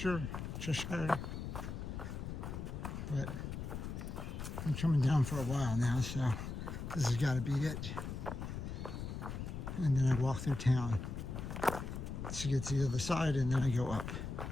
But I'm coming down for a while now, so this has got to be it. And then I walk through town to get to the other side, and then I go up.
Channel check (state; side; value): noise; left; rumble, 6 dB below the sound